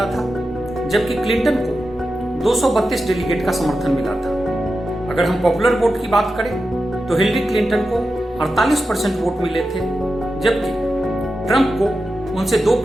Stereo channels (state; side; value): normal; both; correlation 0.91